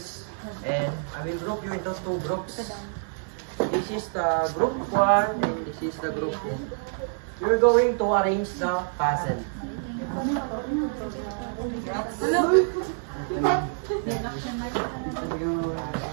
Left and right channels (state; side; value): silent; left; 60 dB below the other